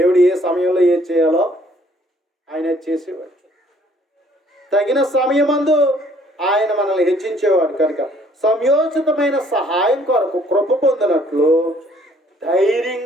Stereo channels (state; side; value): normal; both; correlation 0.61